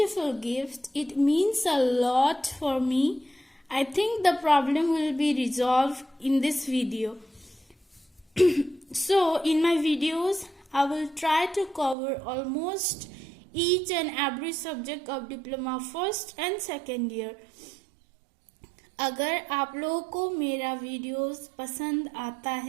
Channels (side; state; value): left; drops out; at 12.0 s